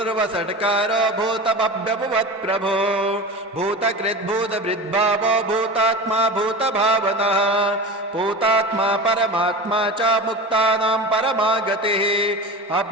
भूतभव्यभुवत्प्रभो भूतकृद्भूतभृद्भावो भूतात्मा भूतभावनः भूतात्मा परमात्मा च मुक्तानां परमा गतिः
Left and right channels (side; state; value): both; normal; correlation 0.30